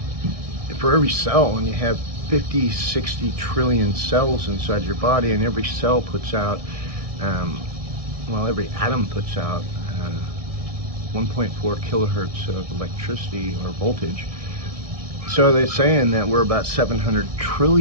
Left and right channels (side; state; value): left; late; 1.6 ms